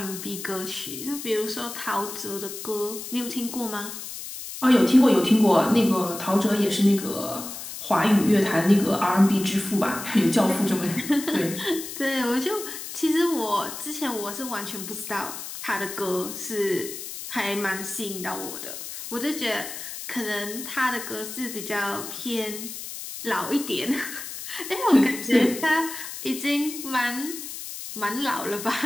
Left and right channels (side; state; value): left; noise; hiss, 9 dB below the sound